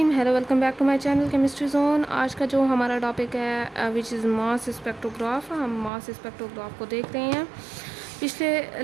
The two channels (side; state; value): left; drops out; at 5.9 s